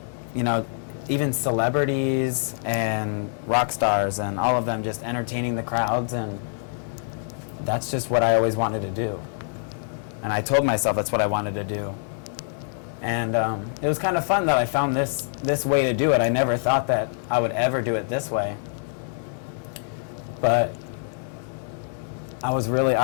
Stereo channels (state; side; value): silent; right; digital silence